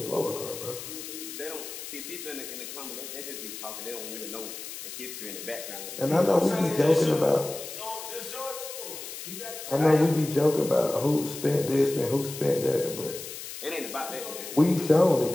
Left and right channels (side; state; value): left; noise; hiss, 10 dB below the sound